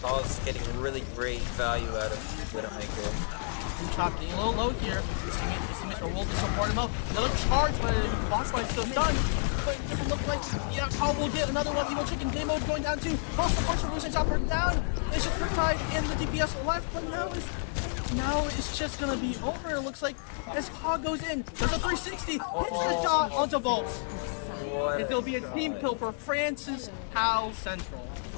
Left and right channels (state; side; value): silent; right; digital silence